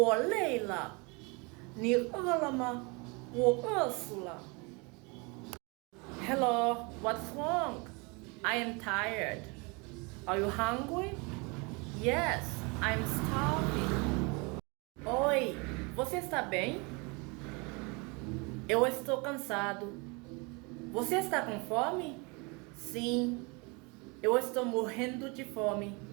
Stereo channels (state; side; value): quieter; left; 29.4 dB